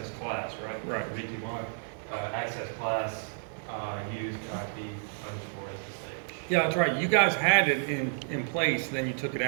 class, right? Right. VTY, access class, used IP underscore SSH. Yeah, that's right. You guys had it in place, then you took it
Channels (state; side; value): silent; left; digital silence